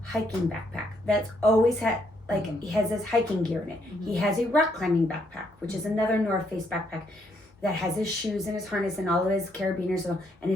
hiking backpack that's always had like he has his hiking gear in it. He has a rock climbing backpack, which is another North Face backpack that has his shoes and his harness and all of his carabiners and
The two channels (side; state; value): both; normal; correlation 0.73